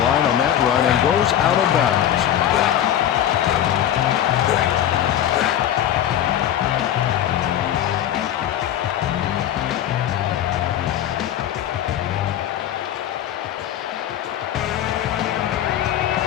line on that run and goes out of bounds.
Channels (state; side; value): quieter; right; 11.1 dB